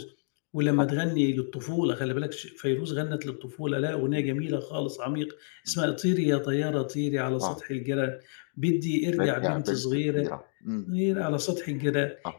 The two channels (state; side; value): silent; right; digital silence